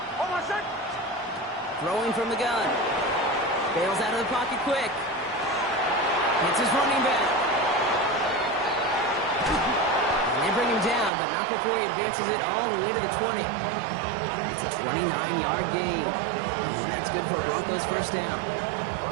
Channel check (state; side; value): drops out; left; at 11.1 s